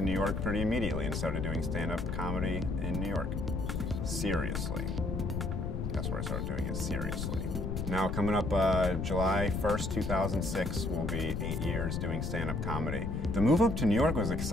New York pretty immediately and started doing stand-up comedy in New York. Seriously. That's where I started doing it, seriously. Now coming up July 1st, 2006 will be 8 years doing stand-up comedy. The move up to New York was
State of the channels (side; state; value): left; noise; rumble, 2 dB below the sound